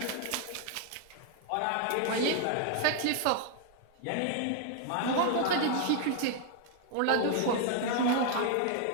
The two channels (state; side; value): different; both; correlation 0.00